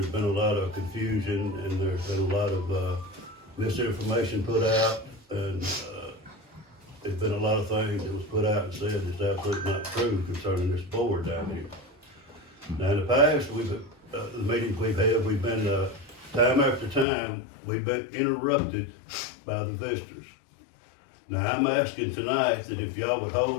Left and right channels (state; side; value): drops out; right; at 17.1 s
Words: been a lot of confusion and there's been a lot of misinformation put out, and there's been a lot of things that was put out and said that's absolutely not true concerning this board down here. Now, in the past, the meetings we've had, we've been time after time, we've been interrupted by the visitors. Now, I'm asking tonight that if y'all would